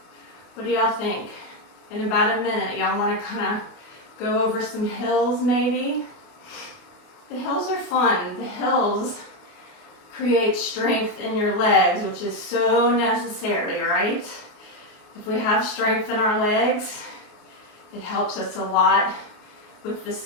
what do y'all think? In about a minute, y'all want to kind of go over some hills maybe? The hills are fun. The hills create strength in your legs, which is so necessary, right? If we have strength in our legs, it helps us a lot with the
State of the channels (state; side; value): late; right; 28 ms